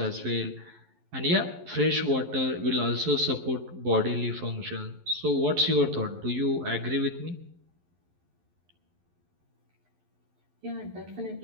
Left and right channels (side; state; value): left; late; 11 ms